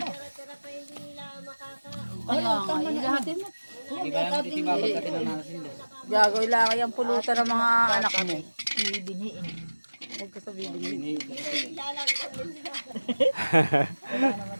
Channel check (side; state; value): both; inverted; correlation -1.00